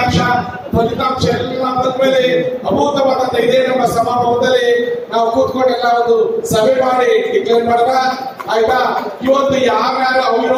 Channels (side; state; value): both; identical; correlation 1.00